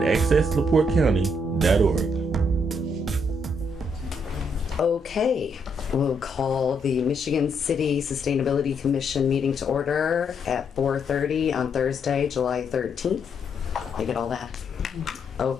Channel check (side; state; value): both; normal; correlation 0.75